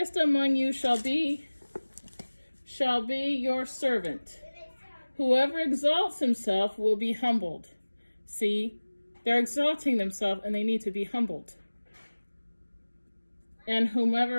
among you shall be your servant. Whoever exalts himself will be humbled. See, they're exalting themselves and they need to be humbled. And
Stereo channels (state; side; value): inverted; both; correlation -1.00